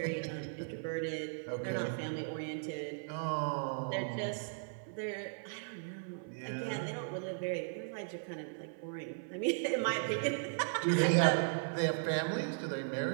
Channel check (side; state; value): left; silent; 53 dB below the other